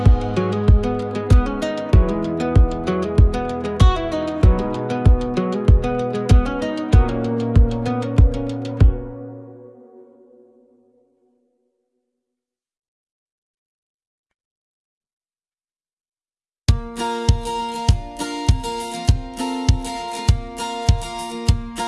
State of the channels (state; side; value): identical; both; correlation 1.00